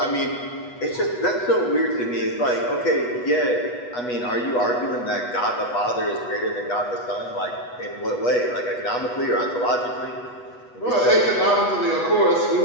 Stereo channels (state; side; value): late; right; 8.2 ms